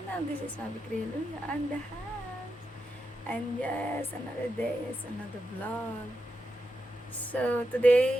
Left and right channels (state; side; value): normal; both; correlation 0.86